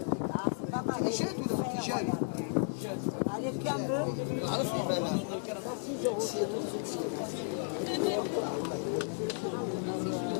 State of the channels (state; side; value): silent; right; digital silence